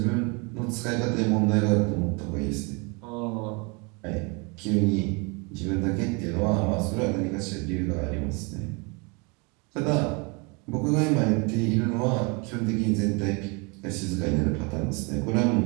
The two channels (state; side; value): quieter; left; 30.6 dB